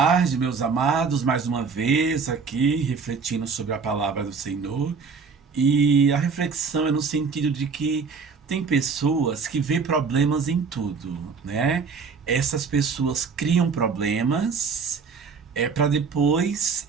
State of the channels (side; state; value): left; quieter; 5.3 dB